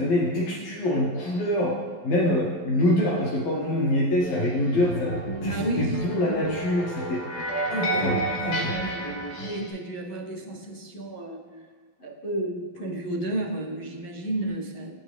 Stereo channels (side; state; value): right; late; 11 ms